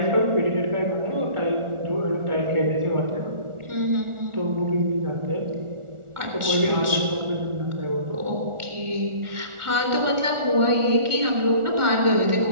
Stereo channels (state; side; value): late; left; 1.4 ms